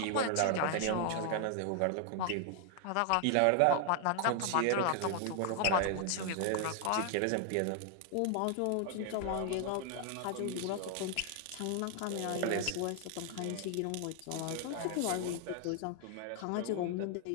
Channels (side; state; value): both; different; correlation 0.00